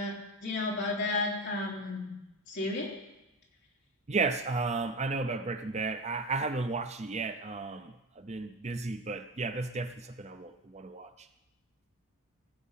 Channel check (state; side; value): normal; both; correlation 0.23